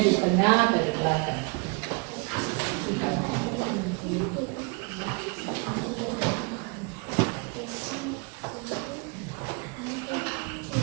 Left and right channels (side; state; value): left; quieter; 30.7 dB